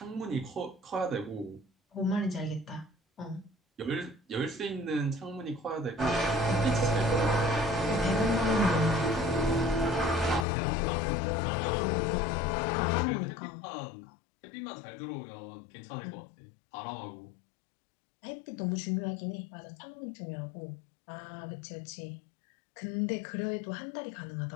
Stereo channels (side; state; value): right; drops out; at 10.5 s